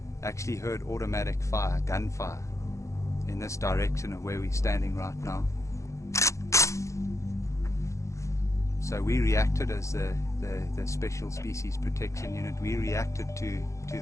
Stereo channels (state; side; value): late; right; 0.15 ms